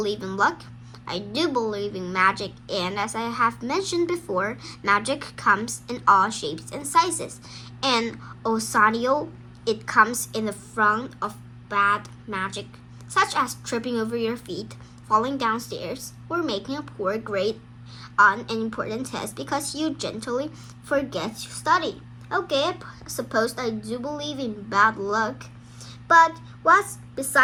in luck, I do believe in magic, and as I have mentioned before, magic comes in all shapes and sizes. And also, it comes in the front of bad magic, such as tripping over your feet, falling downstairs, or making a poor grade on an important test because you gently forget to study. Okay, I suppose I do believe in bad luck. But what's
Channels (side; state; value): both; identical; correlation 1.00